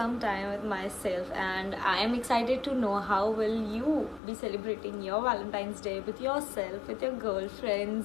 time with myself. And I am excited to know how will you be celebrating your Valentine's Day with yourself, with your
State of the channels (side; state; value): right; drops out; at 4.2 s